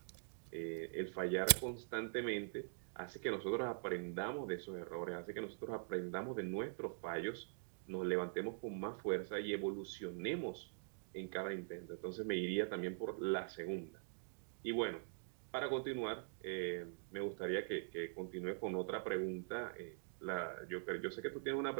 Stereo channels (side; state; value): left; silent; digital silence